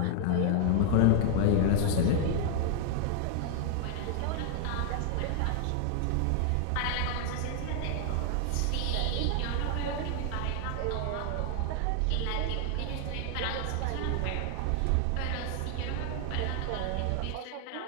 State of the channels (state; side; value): different; both; correlation 0.00